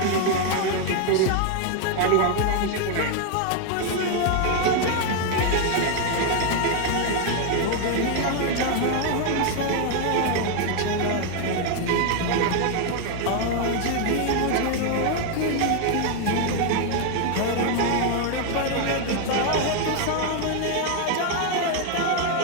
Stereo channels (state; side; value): different; both; correlation 0.01